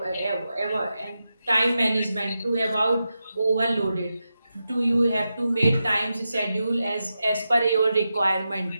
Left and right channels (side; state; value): both; inverted; correlation -0.90